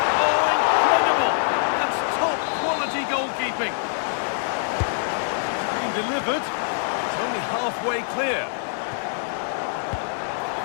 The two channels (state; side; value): silent; right; digital silence